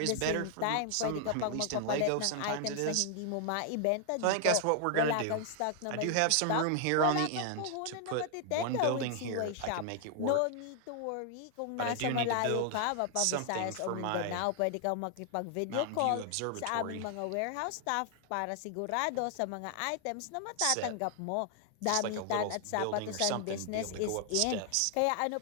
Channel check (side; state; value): both; different; correlation 0.00